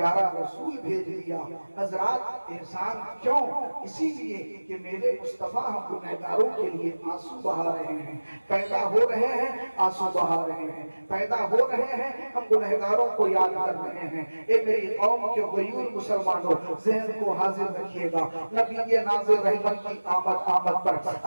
رسول بھیج دیا. حضرات احسان کیوں؟ اسی لیے کہ میرے مصطفیٰ ہم گنہگاروں کے لیے آنسو بہا رہے ہیں، پیدا ہو رہے ہیں آنسو آنسو بہا رہے ہیں، پیدا ہو رہے ہیں، ہم گنہگاروں کو یاد کر رہے ہیں۔ اے میری قوم کے غیور مسلمانوں، ذہن کو حاضر رکھیے گا، نبی ناظر رحمت کی آمد پر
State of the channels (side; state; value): both; inverted; correlation -1.00